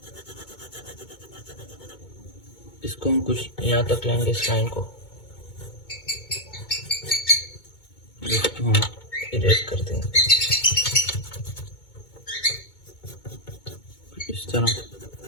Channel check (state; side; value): late; right; 2.2 ms